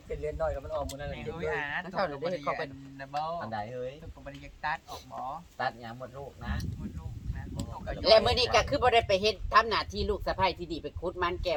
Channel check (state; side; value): identical; both; correlation 1.00